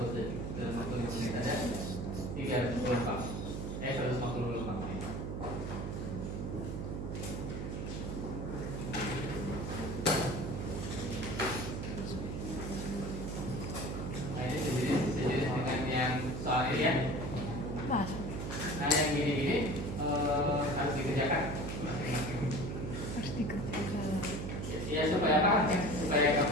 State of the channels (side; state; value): right; noise; hum, 4 dB below the sound